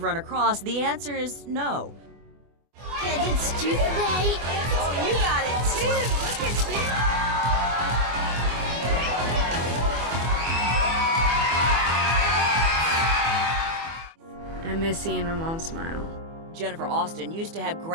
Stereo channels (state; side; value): late; left; 24 ms